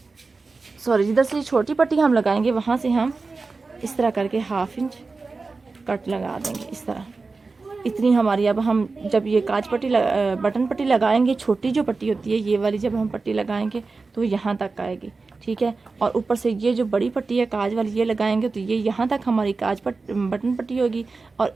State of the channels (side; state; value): left; quieter; 4.0 dB